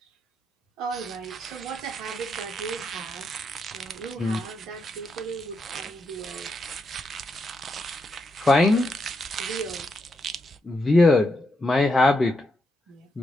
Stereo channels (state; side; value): normal; both; correlation 0.82